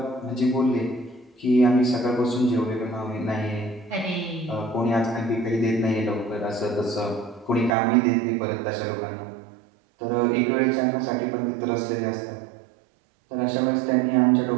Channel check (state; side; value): drops out; left; at 7.8 s